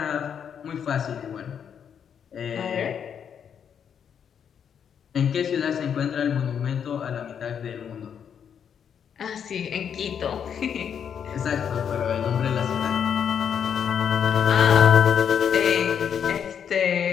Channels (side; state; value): right; quieter; 7.9 dB